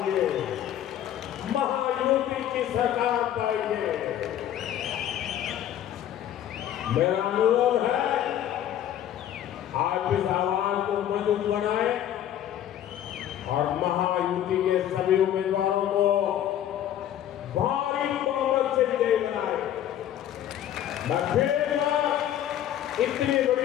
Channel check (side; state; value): right; quieter; 11.1 dB